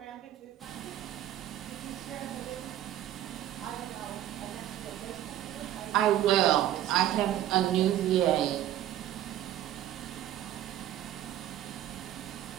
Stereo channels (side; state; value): left; quieter; 12.5 dB